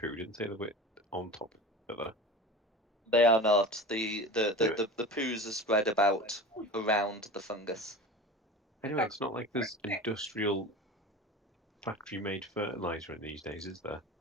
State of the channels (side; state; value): both; normal; correlation 0.33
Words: didn't say the bit on top of each other. They are not. The Anyway. poos are spread about around the fungus. Anyway, it's not like there's industrial factory-made fertilizer in these days, is there?